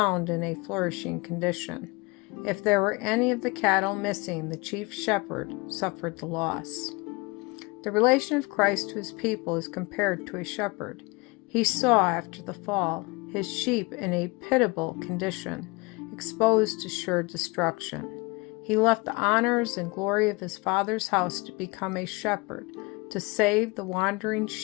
in a flourishing condition. If there were any of the cattle missing, the chief shepherd suffered the loss. The relation of Christ to his people is compared to a shepherd. He saw, after the fall, his sheep in a pitiable condition, exposed to sure destruction. He left the honors and glory of his Father's house to become a shepherd, to save the wandering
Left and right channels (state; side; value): quieter; right; 26.4 dB